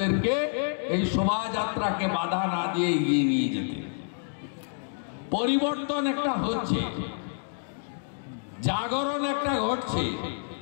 এই শোভাযাত্রাকে বাধা না দিয়ে এগিয়ে নিয়ে যেতে। পরিবর্তন একটা হচ্ছে, জাগরণ একটা ঘটছে।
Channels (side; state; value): right; silent; digital silence